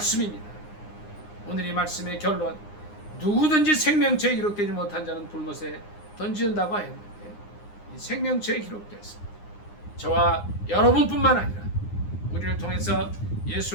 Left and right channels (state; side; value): late; right; 9.7 ms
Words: 오늘 이 말씀의 결론, 누구든지 생명체에 기록되지 못한 자는 불못에 던진다고 했는데 이 생명체에 기록됐습니다. 저와 여러분뿐만 아니라 우리를 통해서